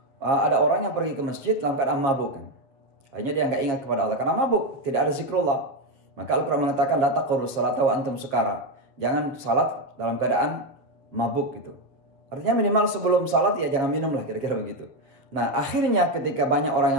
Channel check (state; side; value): late; left; 7.1 ms